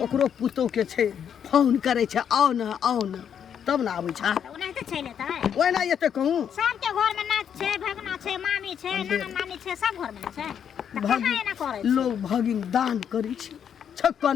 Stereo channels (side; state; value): right; quieter; 8.3 dB